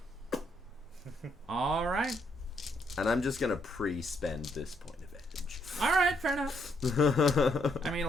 All right. And I'm just gonna pre-spend this point of All right, fair enough. edge. I mean,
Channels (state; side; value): normal; both; correlation 0.74